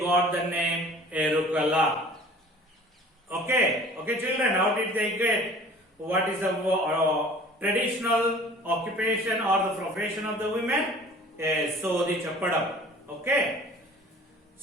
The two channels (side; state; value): both; normal; correlation 0.47